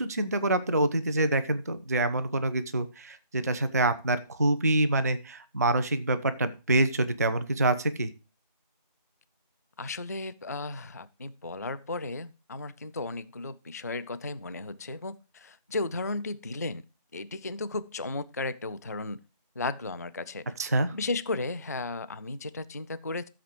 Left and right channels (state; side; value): inverted; both; correlation -0.60